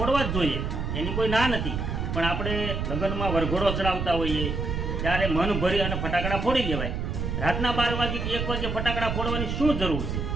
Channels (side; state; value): right; noise; rumble, 2 dB below the sound